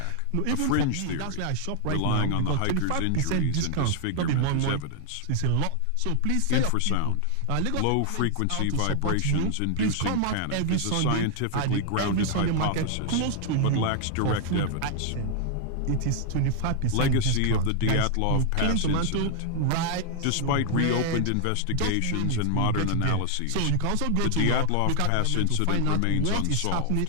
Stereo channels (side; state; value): both; different; correlation 0.00